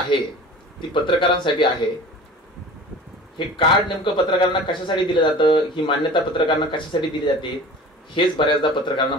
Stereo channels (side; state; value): both; normal; correlation 0.40